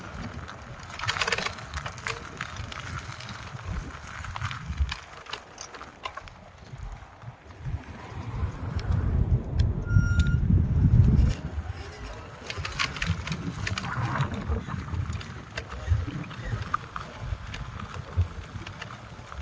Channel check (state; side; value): identical; both; correlation 1.00